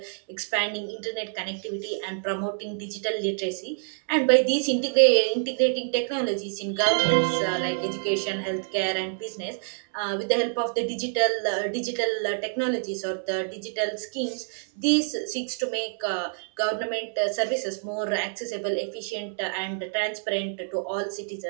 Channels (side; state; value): left; silent; 60 dB below the other